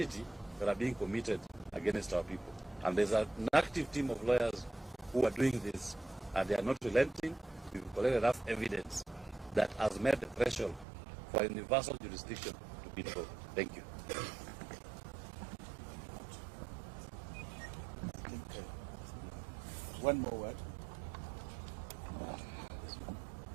that are being committed against our people. And there's an active team of lawyers who are doing this, and they are not relenting. We've collected enough evidence that has made the threshold for universal jurisdiction to be invoked. Thank you. I think one more word.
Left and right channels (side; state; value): left; drops out; at 10.9 s